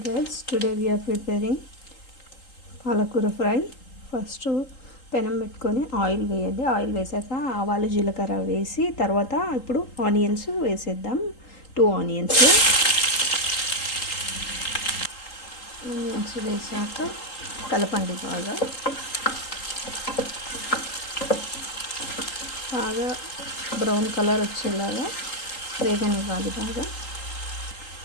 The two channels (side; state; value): right; late; 3.8 ms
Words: today we are preparing పాలకూర fry. First పెనం పెట్టుకొని ఆయిల్ వేయండి. ఆయిల్ వేసాక ఆవాలు జీలకర్ర వేసి తర్వాత ఇప్పుడు ఆనియన్స్ వేసేద్దాం. 2 ఆనియన్స్ వేసాక కలపండి. బాగా బ్రౌన్ కలర్ వచ్చేలాగా వేగనివ్వాలి. బాగా